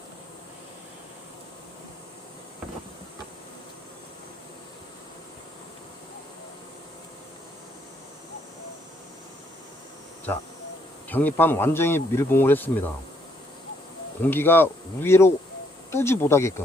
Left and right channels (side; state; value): both; normal; correlation 0.70